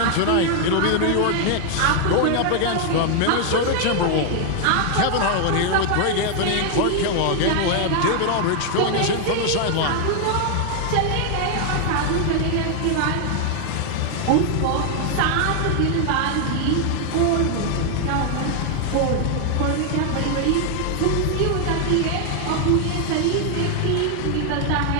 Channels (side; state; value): both; different; correlation 0.00